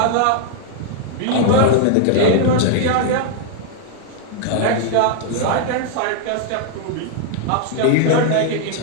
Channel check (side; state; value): both; different; correlation 0.00